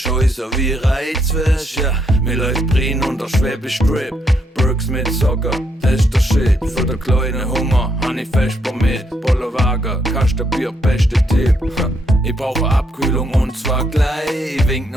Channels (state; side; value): normal; both; correlation 0.75